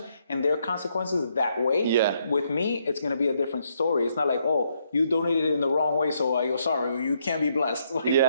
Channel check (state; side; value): inverted; both; correlation -0.74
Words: and their consequences that way. Yeah. With me, it's going to be a different story. It's not like, oh, you donated it in the wrong way, so you're sorry, you can't be blessed. Like,